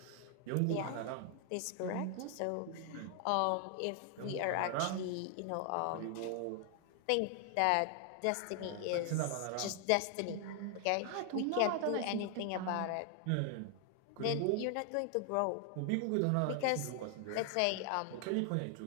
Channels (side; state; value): both; different; correlation 0.00